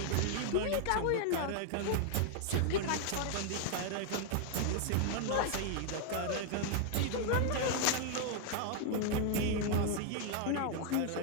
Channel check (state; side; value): different; both; correlation 0.00